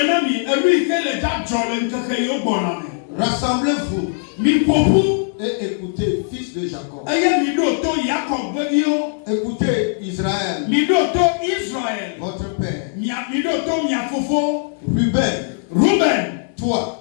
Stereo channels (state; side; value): silent; right; digital silence